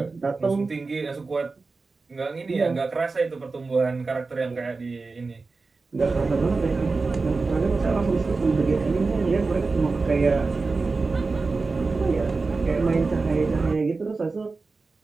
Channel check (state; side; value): quieter; left; 4.0 dB